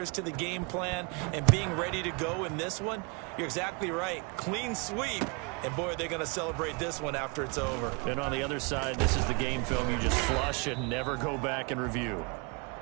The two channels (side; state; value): left; quieter; 32.1 dB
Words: to the game plan, and being ready to go in this one? You're exactly right. Clean sweep. And, boy, are they going to celebrate this one after it's over. And on the other side, this is the game film you just flush and never go back and review.